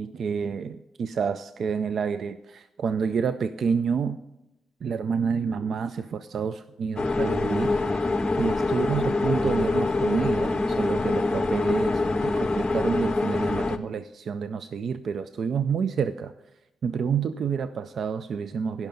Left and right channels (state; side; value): normal; both; correlation 0.85